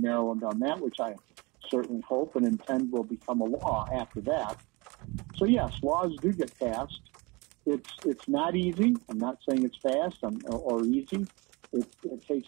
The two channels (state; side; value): quieter; left; 26.2 dB